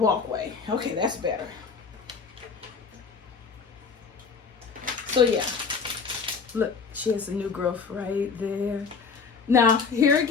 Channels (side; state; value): right; quieter; 5.5 dB